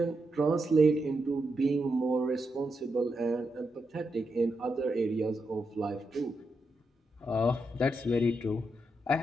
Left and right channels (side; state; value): both; normal; correlation 0.84